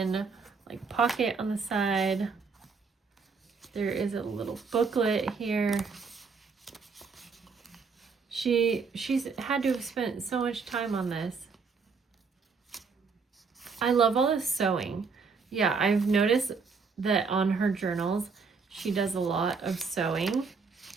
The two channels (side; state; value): left; quieter; 5.0 dB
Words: like pocket on the side. There is a little booklet here. She's had to have spent so much time on this. I love all this sewing. Yeah, I've noticed that on her journals, she does a lot of sewing.